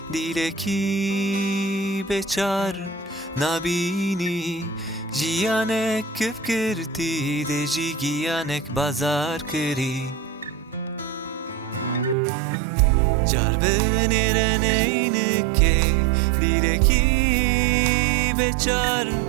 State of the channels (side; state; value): left; drops out; at 12.2 s